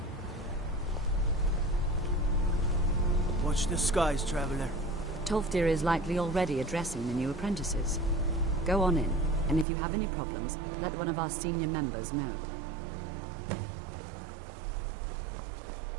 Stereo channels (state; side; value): drops out; left; at 9.7 s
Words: Watch the skies, traveler. Tolfdir is likely already addressing the new apprentices. Go on in, and if you have any problems, let one of our senior members know.